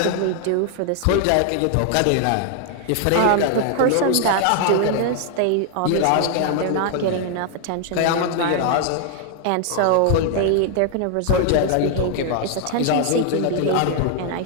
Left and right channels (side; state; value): both; different; correlation 0.00